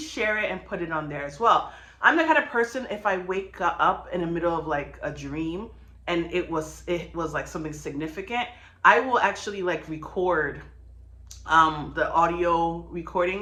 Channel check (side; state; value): both; identical; correlation 1.00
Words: it and put it on there as well. I'm the kind of person, if I wake up in the middle of like a dream and it was like something significant, I will actually like record the audio